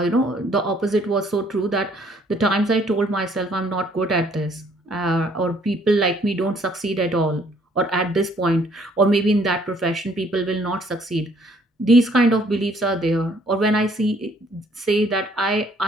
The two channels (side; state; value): both; normal; correlation 0.63